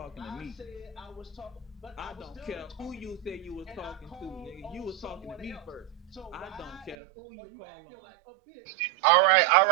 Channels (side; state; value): left; drops out; at 7.0 s